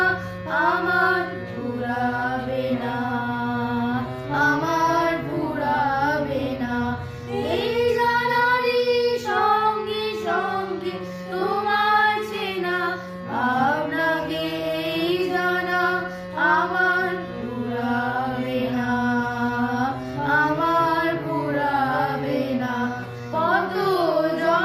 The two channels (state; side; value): identical; both; correlation 1.00